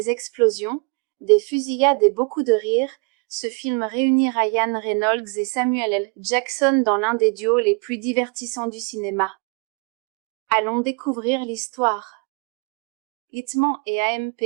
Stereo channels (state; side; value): quieter; left; 33.4 dB